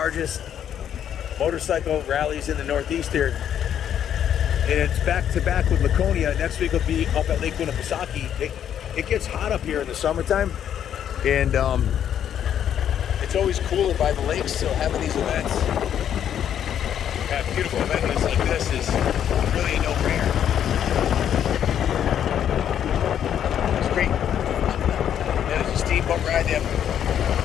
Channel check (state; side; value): quieter; right; 9.6 dB